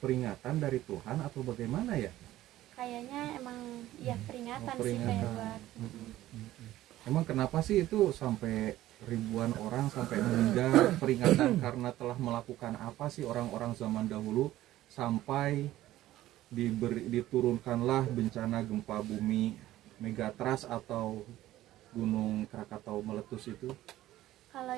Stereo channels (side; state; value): left; quieter; 14.8 dB